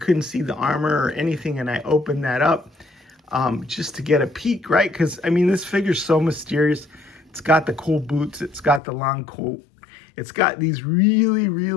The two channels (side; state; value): right; drops out; at 8.8 s